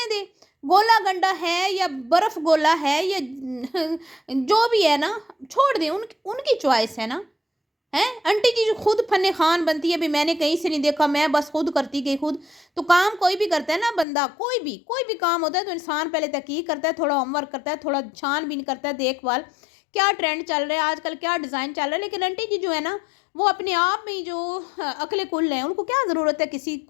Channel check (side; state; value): right; drops out; at 14.1 s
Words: दें। गोला गंडा है या बर्फ़ गोला है या जो भी है ना, छोड़ दें, उनकी चॉइस है ना। ہیں آنٹی جی جو خود فن خان بنتی ہے، ابھی میں نے کہیں سے نہیں دیکھا، میں بس خود کرتی گئی خود. تو کام کوئی بھی کرتا ہے نا بندہ، کوئی بھی کام ہوتا ہے تو انسان پہلے تحقیق کرتا ہے، تھوڑا ہوم ورک کرتا ہے، تھوڑا چھان بین کرتا ہے، دیکھ بھال کیا ٹرینڈ چل رہا ہے آج کل، کیا ڈیزائن چل رہا ہے. لیکن آنٹی جی جو ہے نا وہ اپنے آپ میں جو عقل کل ہیں، ان کو کیا ضرورت ہے کسی